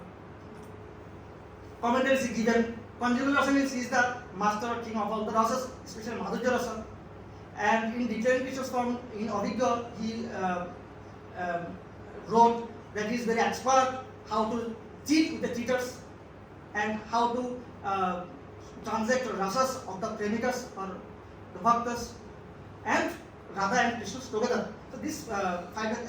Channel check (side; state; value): both; identical; correlation 1.00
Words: commentaries given. Conjugal rasa means he is the master or king of all the rasas, especially Madhurya rasa. And in declaring Krishna's form in Abhigya, he wrote that he is very expert how to cheat with the cheaters and how to transact rasas of the premikas or the bhaktas and Radha and Krishna together. So these five